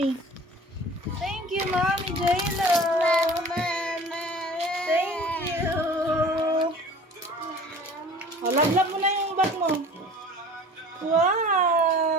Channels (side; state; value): both; normal; correlation 0.44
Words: Thank you, Mommy J-Lo. Thank you. Oh, love mo na yung bag mo.